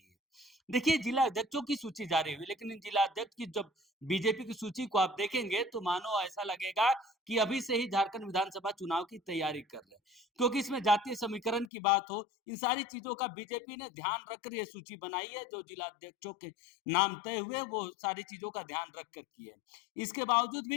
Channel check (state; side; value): drops out; right; at 11.7 s